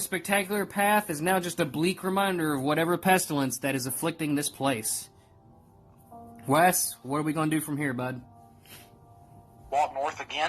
spectacular path is now just a bleak reminder of whatever pestilence that is afflicting this place. Wes, what are we going to do from here, bud? Walk north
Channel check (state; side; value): identical; both; correlation 1.00